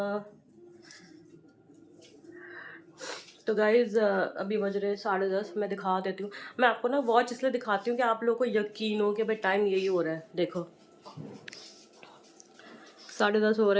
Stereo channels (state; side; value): identical; both; correlation 1.00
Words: तो guys अभी बज रहे 10:30। मैं दिखा देती हूँ। मैं आपको ना वॉच इसलिए दिखाती हूँ कि आप लोगों को यकीन हो कि भाई टाइम यही हो रहा है। देखो 10:30 हो